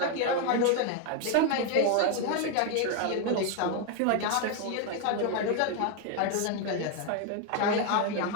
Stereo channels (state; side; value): different; both; correlation 0.01